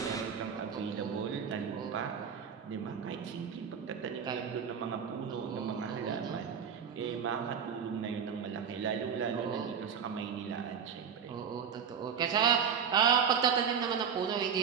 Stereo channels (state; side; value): quieter; left; 7.3 dB